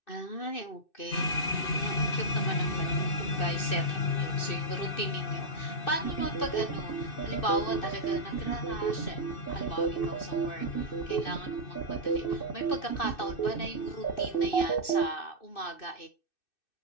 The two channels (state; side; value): late; right; 2.6 ms